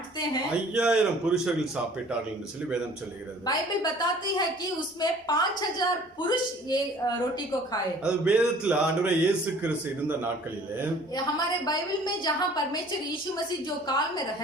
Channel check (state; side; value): normal; both; correlation 0.51